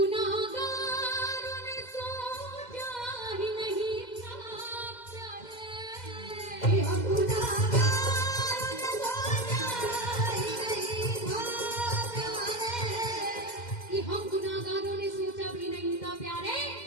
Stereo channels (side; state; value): right; late; 2.1 ms